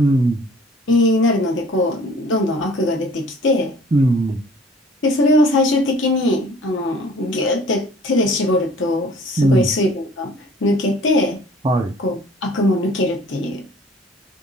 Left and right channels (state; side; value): normal; both; correlation 0.51